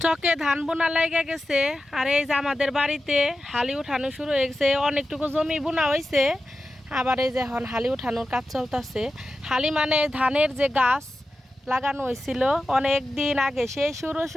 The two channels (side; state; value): both; normal; correlation 0.92